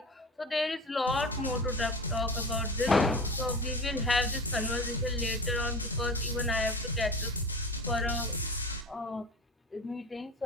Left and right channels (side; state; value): both; normal; correlation 0.33